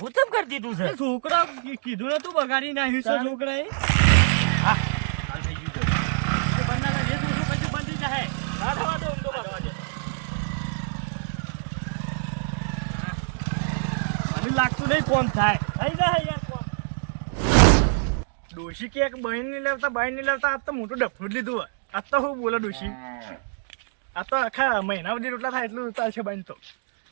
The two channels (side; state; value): left; silent; digital silence